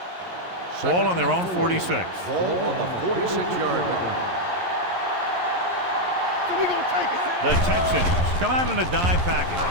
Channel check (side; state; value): left; late; 11 ms